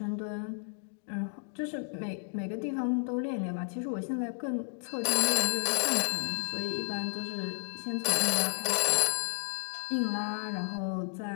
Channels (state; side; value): silent; right; 56 dB below the other